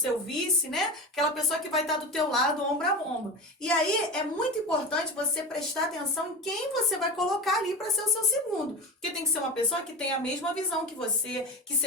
vice, né? Aquela pessoa que vai estar do teu lado, ombro a ombro. E aí é muito importante você prestar atenção em quem você vai colocar ali para ser o seu segundo. Porque tem que ser uma pessoa que tenha a mesma visão que você, que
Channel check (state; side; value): normal; both; correlation 0.27